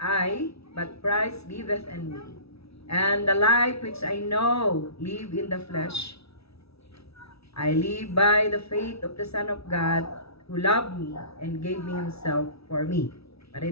I, but Christ liveth in me. And the life which I know live in the flesh, I live by the faith of the Son of God, who loved me and gave me himself for me.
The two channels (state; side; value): late; right; 0.77 ms